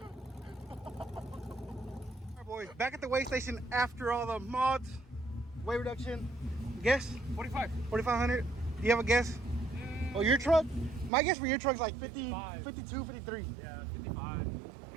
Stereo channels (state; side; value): drops out; left; at 11.1 s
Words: Back at the weigh station after all the mods, weight reduction. Guess? 4,500. Do you have a guess? Oh, your truck? My guess for your truck's like 50, 52, 53. Yeah, 55.